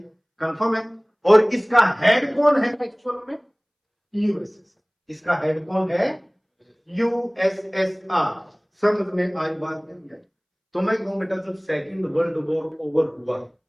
कंफर्म है? और इसका हेड कौन है एक्चुअल में? यूएसएसआर। इसका हेड कौन है? यूएसएसआर। समझ में आई बात या नहीं आई? तो मैं कहूं बेटा, जब सेकेंड वर्ल्ड वॉर ओवर हुआ,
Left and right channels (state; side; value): identical; both; correlation 1.00